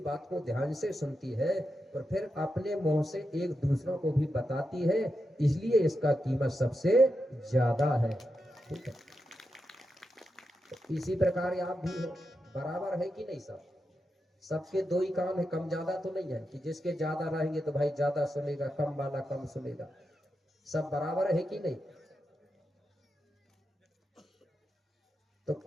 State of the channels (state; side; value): normal; both; correlation 0.87